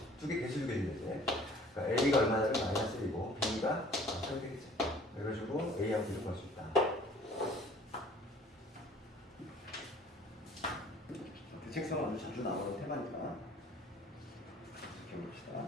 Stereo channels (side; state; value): both; normal; correlation 0.51